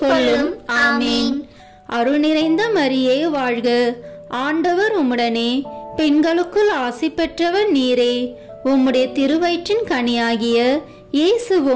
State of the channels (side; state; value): both; identical; correlation 1.00